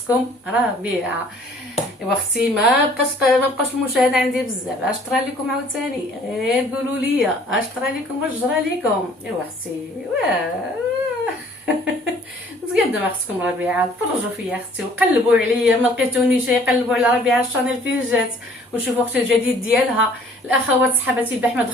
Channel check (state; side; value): normal; both; correlation 0.56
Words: ربيعه. ايوا اختي ما بقاش المشاهده عندي بزاف، اش طرا لكم عاوتاني؟ غير قولوا لي اش طرا لكم واش جرى لكم. ايوا اختي مزيان دابا خصكم ربيعه تفرجوا فيا اختي وقلبوا عليا، ما لقيتونيش يقلبوا على ربيعه الشانيل فين جات وشوفوا اختي الجديد ديالها. الاخوات صحباتي البارح ما